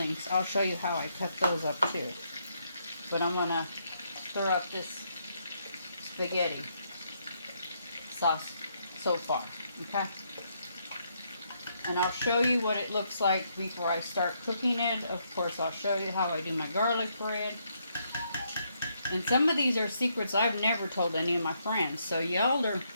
I'll show you how I cut those up too. But I'm going to stir up this spaghetti sauce so far, okay? And I'll show you what it looks like before I start cooking it. Of course, I'll show you how I do my garlic bread. And some of these are secrets I've never told any of my friends. So y'all are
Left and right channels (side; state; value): both; inverted; correlation -0.75